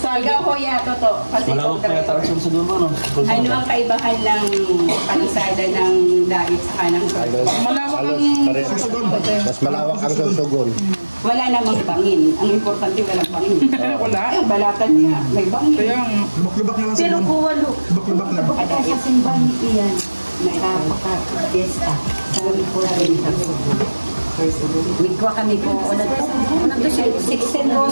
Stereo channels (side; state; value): both; inverted; correlation -1.00